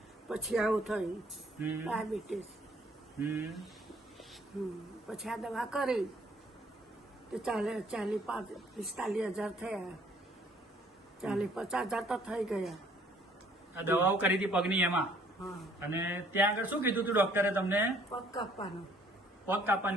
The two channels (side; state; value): both; normal; correlation 0.60